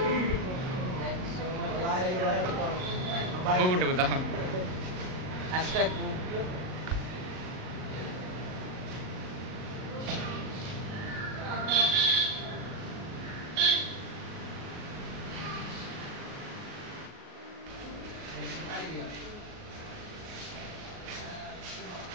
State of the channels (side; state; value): left; late; 38 ms